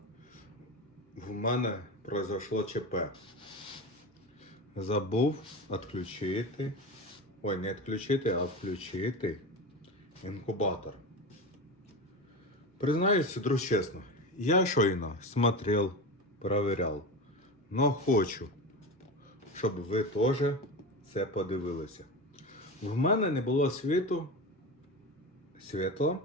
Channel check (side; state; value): both; normal; correlation 0.24